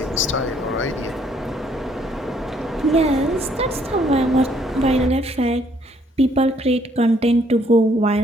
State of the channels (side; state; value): both; normal; correlation 0.66